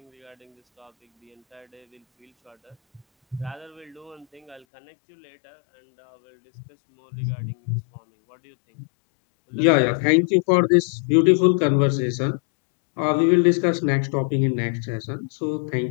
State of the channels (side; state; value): right; drops out; at 4.7 s